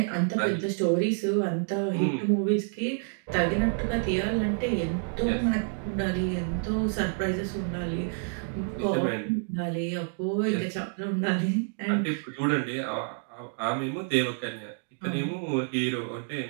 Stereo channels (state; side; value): silent; left; 58 dB below the other